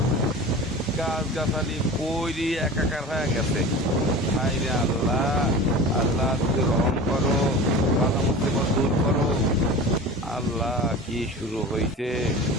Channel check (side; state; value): both; normal; correlation 0.35